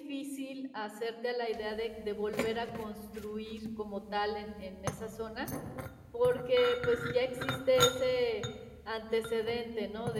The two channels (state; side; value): identical; both; correlation 1.00